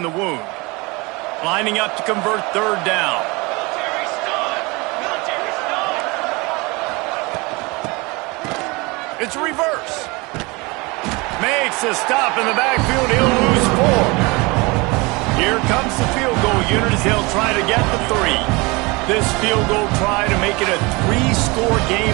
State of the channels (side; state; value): left; quieter; 25.6 dB